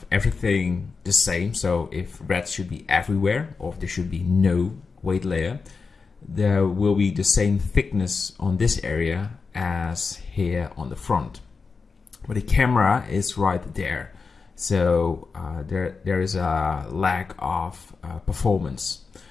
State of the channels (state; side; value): quieter; right; 4.8 dB